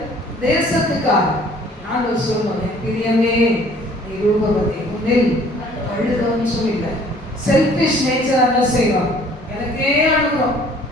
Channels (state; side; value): normal; both; correlation 0.55